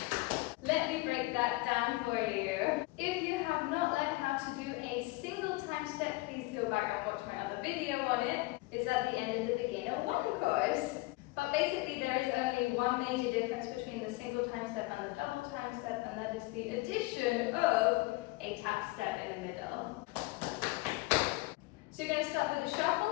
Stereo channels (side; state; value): right; quieter; 21.9 dB